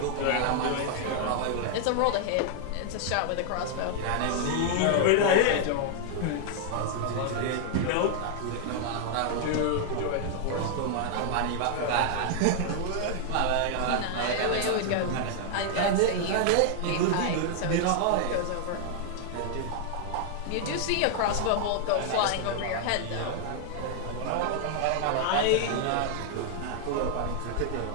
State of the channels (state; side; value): different; both; correlation 0.00